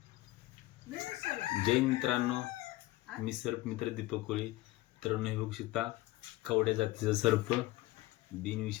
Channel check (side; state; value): right; quieter; 18.3 dB